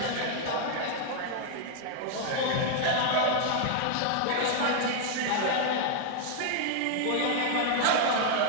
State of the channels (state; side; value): different; both; correlation 0.00